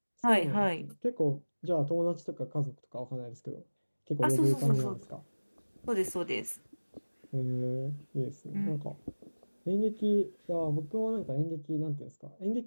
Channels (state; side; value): inverted; both; correlation -1.00